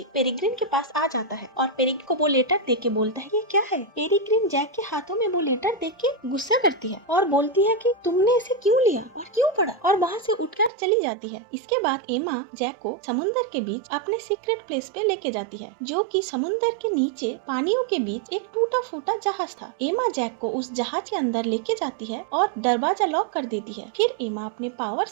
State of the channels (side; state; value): left; drops out; at 10.7 s